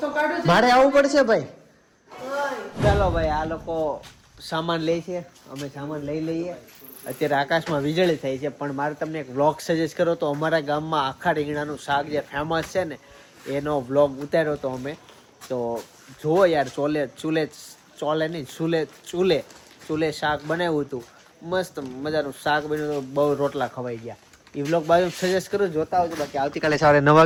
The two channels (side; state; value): both; identical; correlation 1.00